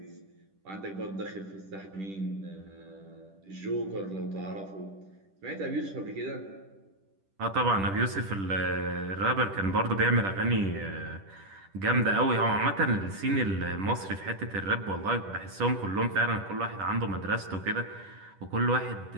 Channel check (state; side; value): late; left; 10 ms